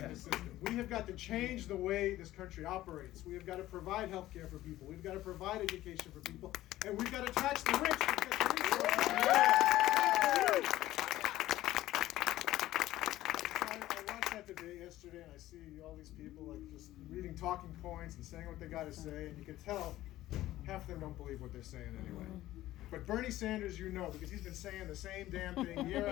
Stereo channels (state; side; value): quieter; right; 15.2 dB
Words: system. We have got to change the way this country operates. We have got to provide health care for people. We've got to provide education for people. And we've got to tax the rich. Debate yesterday, and I see all these people like just reading talking points and saying what they got to say, and you can tell half of them don't believe what they're saying anyway. But Bernie Sanders, you know, because he's been saying the same damn thing year